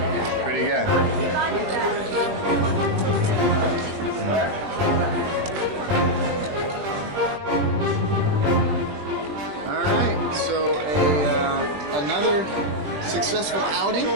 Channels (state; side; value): late; left; 20 ms